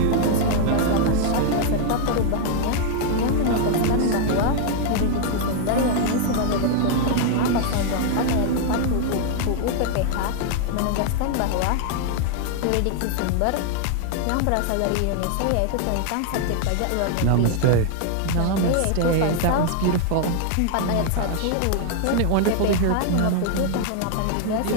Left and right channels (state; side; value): different; both; correlation 0.00